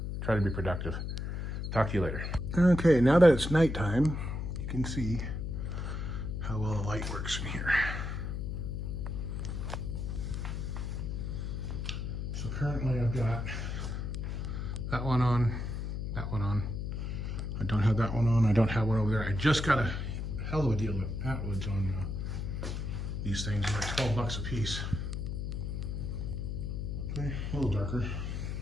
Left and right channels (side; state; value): left; noise; hum, 3 dB below the sound